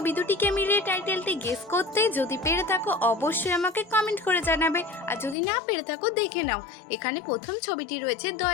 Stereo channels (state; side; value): drops out; right; at 5.4 s